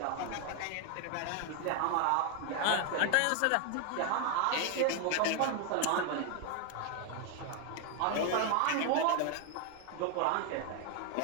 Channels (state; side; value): different; both; correlation 0.01